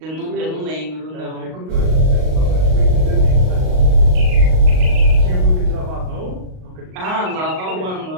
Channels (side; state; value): left; late; 38 ms